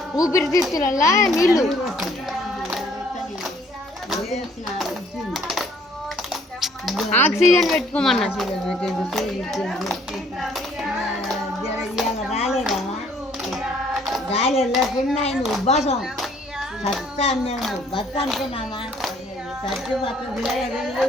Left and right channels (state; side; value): normal; both; correlation 0.61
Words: ఊపిరితిత్తులల్లా నీళ్ళు ఆక్సిజన్ పెట్టుకోమన్నా. రాలేదా గాలి వెళ్ళకుండా ఆయన ఉబ్బాసం సత్తా మేము బతు అనుకున్నామా సత్తి పక్క